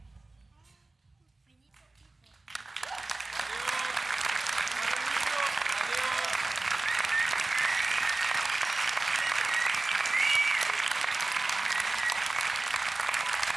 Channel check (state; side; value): quieter; left; 3.1 dB